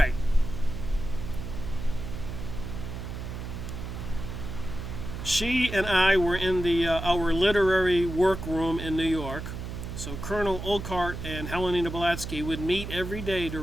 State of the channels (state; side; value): noise; right; hum, 7 dB below the sound